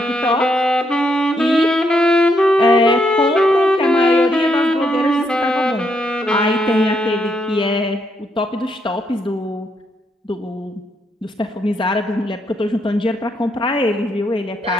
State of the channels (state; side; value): normal; both; correlation 0.77